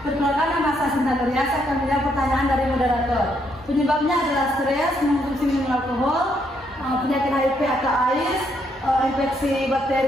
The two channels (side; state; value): both; normal; correlation 0.74